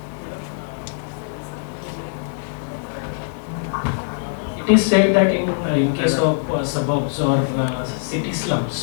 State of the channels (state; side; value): silent; right; digital silence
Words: it is said that in case of suburbs or city